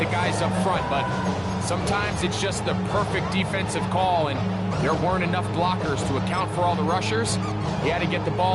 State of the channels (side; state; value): both; identical; correlation 1.00